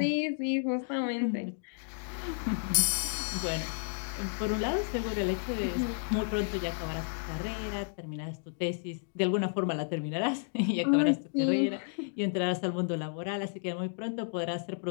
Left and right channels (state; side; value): silent; right; digital silence